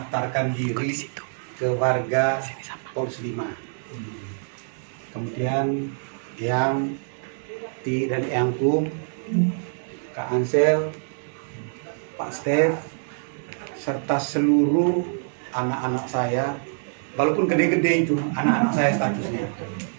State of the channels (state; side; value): silent; left; digital silence